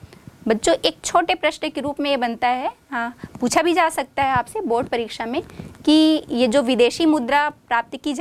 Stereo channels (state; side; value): identical; both; correlation 1.00